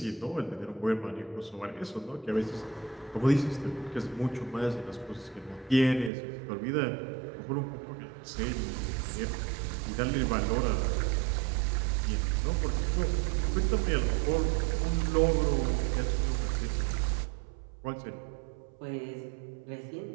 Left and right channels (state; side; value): drops out; left; at 6.1 s